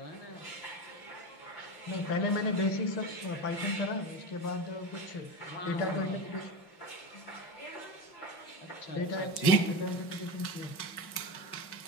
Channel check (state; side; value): late; right; 5.4 ms